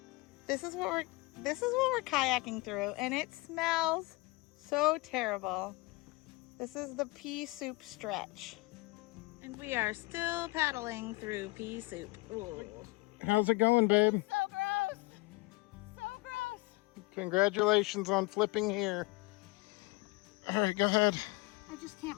This is what we're kayaking through, and it smells so terrible. This is the pea soup stretch. And we are still paddling through pea soup. Ooh. How's it going, babe? So gross. So gross. Congratulations on flipping here. All right, go ahead. I just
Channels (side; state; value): right; quieter; 23.5 dB